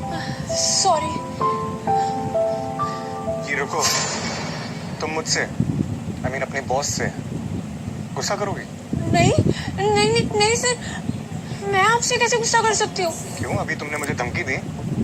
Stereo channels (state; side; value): identical; both; correlation 1.00